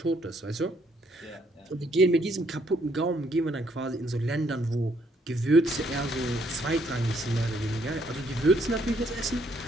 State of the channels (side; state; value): both; normal; correlation 0.69